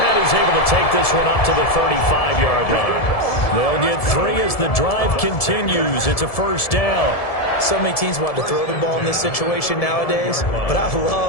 he's able to take this one up to the 35-yard line. They'll get 3 as the drive continues. It's a 1st down. So many teams want to throw the ball in this situation nowadays, but I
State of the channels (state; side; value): late; right; 1.7 ms